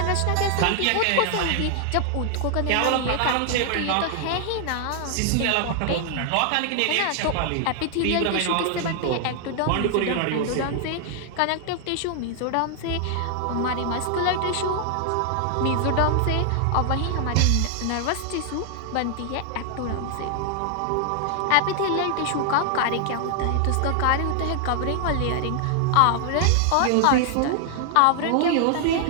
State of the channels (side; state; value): both; different; correlation 0.00